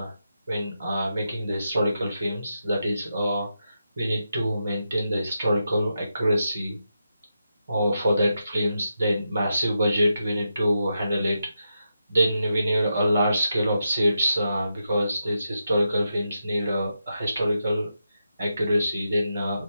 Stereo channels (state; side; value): inverted; both; correlation -0.86